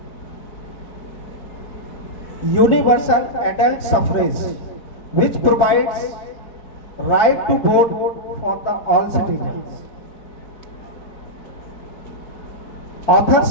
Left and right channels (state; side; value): late; right; 3.9 ms